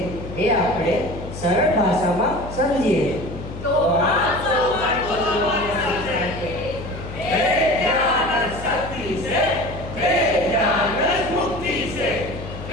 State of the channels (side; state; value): left; noise; hum, 11 dB below the sound